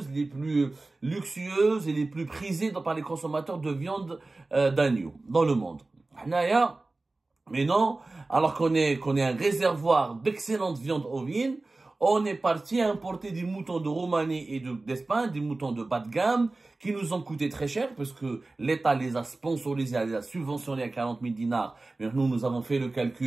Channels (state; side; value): quieter; left; 3.2 dB